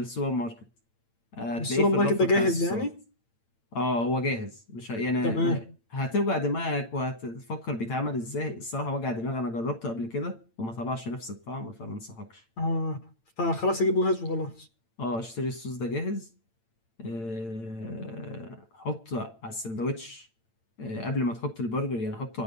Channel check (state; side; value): late; right; 8.9 ms